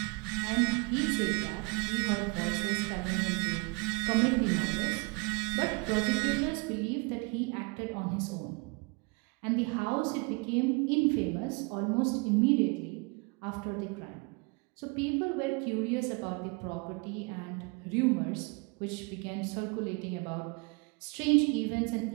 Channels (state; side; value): quieter; left; 29.5 dB